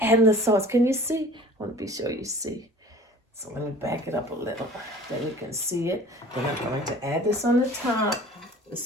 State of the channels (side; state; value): both; normal; correlation 0.46